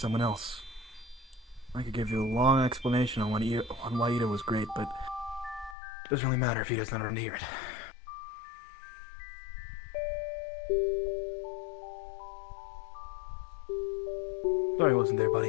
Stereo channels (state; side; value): drops out; right; at 5.8 s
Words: else. I could give you a long explanation on why Itto was great, but it doesn't really matter if he doesn't want to hear it. Sorry I wasn't there,